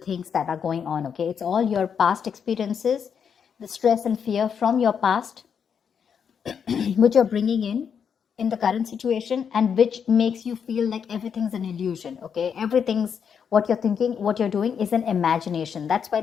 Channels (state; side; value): quieter; right; 7.2 dB